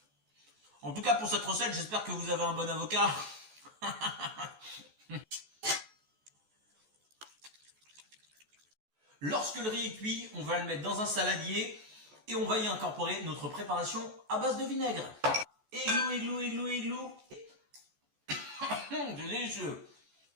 En tout cas, pour cette recette, j'espère que vous avez un bon avocat. Lorsque le riz est cuit, on va le mettre dans un saladier et on va y incorporer notre préparation à base de vinaigre. Églou, églou, églou, églou. C'est délicieux.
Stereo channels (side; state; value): left; late; 14 ms